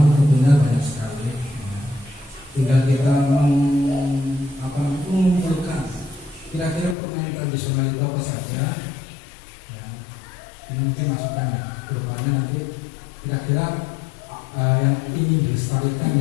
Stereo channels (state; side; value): drops out; right; at 7.0 s